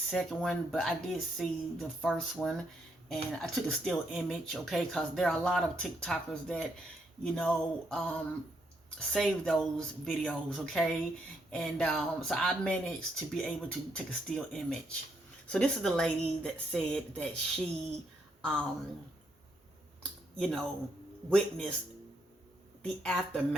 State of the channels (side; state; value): both; normal; correlation 0.76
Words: one, but I did see the first one, and I took a still image, okay, because there are a lot of TikTokers that, save those videos, okay, and so I managed to be able to take a still image. So this is the lady that said that she um, witness the